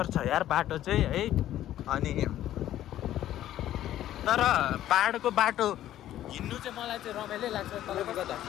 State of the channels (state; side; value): quieter; right; 12.7 dB